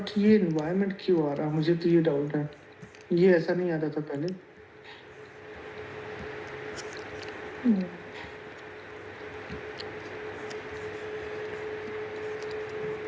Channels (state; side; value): identical; both; correlation 1.00